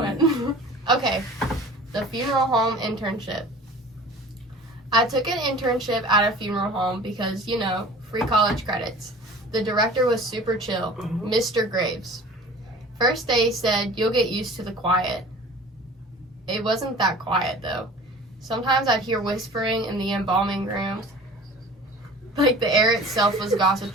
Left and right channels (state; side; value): normal; both; correlation 0.43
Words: you doing? Okay, the funeral home internship. I took an internship at a funeral home because, you know, free college credits. The director was super chill, Mr. Graves. First day said, you'll get used to the quiet. It wasn't that quiet, though. Sometimes I'd hear whispering in the embalming rooms. Like the air itself was